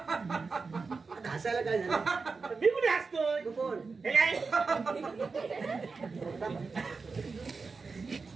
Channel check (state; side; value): quieter; left; 4.5 dB